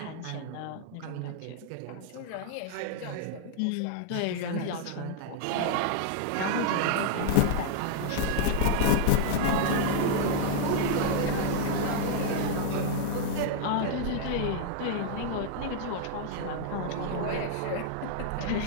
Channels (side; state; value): both; different; correlation -0.01